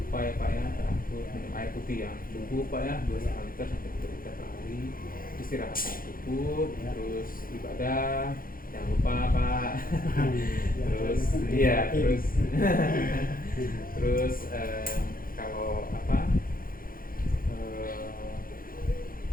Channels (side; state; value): right; late; 0.41 ms